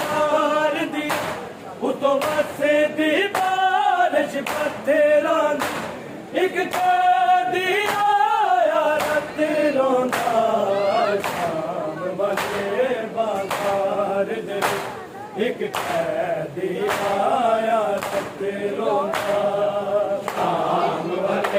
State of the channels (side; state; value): both; identical; correlation 1.00